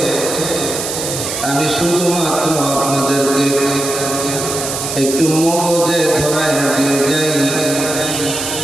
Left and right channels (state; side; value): noise; right; hiss, 4 dB below the sound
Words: আমি শুধুমাত্র আপনাদেরকে একটু মগজে ধরায় দিয়ে যাই।